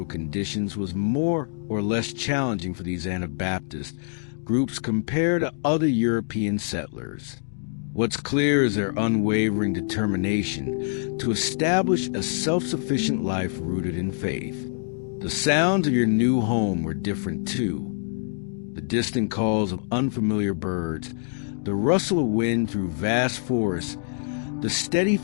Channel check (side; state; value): right; silent; digital silence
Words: conditions was more or less challenging for these Anabaptist groups compared to other European settlers. What's clear is their unwavering determination to establish a self-sufficient life rooted in faith. The sounds of your new home were different too. The distant calls of unfamiliar birds, the rustle of wind through vast forests, the steady